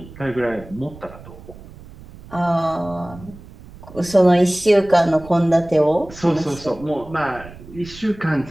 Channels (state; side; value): noise; right; rumble, 18 dB below the sound